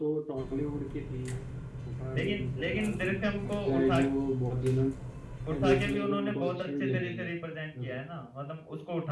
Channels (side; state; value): both; identical; correlation 1.00